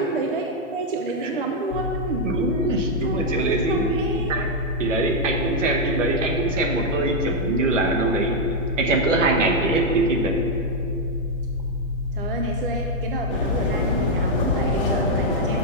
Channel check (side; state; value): both; normal; correlation -0.01